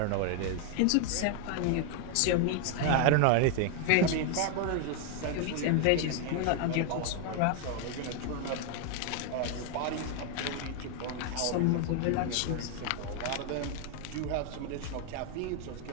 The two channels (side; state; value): both; different; correlation 0.00